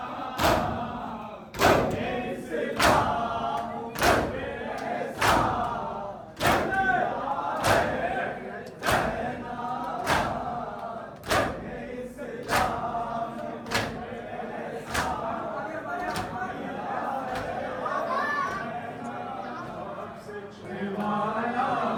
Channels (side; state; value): both; identical; correlation 1.00